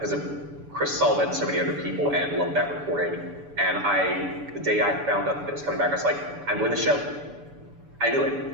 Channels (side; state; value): left; late; 6.9 ms